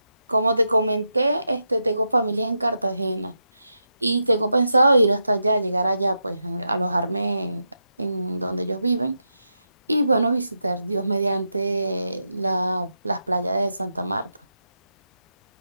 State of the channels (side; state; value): both; inverted; correlation -0.86